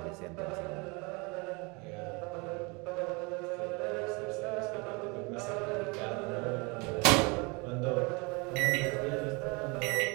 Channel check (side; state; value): left; quieter; 28.6 dB